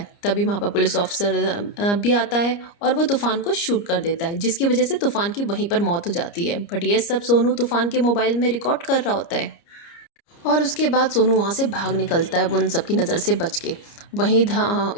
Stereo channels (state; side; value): late; right; 29 ms